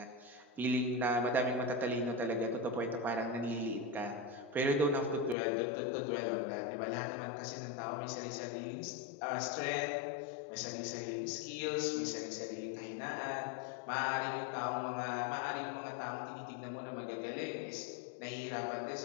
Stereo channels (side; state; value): right; drops out; at 5.4 s